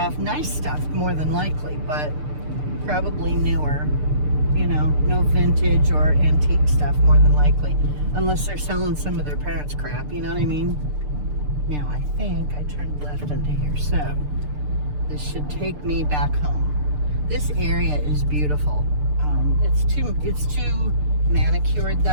nice stuff more than likely, but probably newer, you know, no vintage or antique stuff more than likely, unless they're selling some of their parents' crap, you know what I mean? Now I think I turned left into here, so this should take me back home. This area is beautiful. It's too manicured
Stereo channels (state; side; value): late; left; 6.7 ms